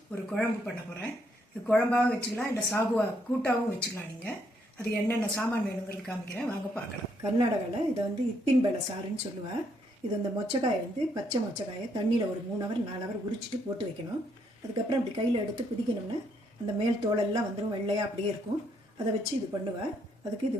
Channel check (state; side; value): normal; both; correlation 0.72